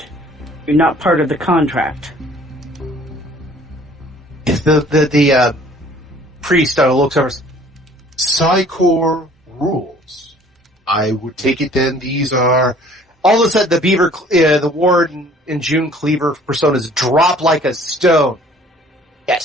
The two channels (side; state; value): both; normal; correlation 0.54